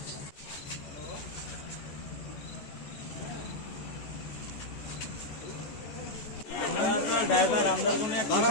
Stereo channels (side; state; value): right; late; 14 ms